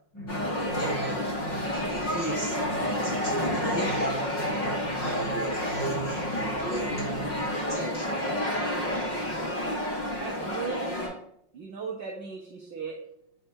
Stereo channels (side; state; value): right; late; 5.5 ms